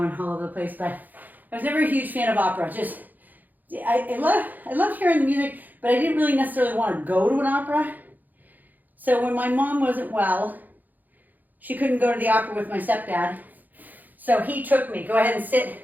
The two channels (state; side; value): late; left; 0.084 ms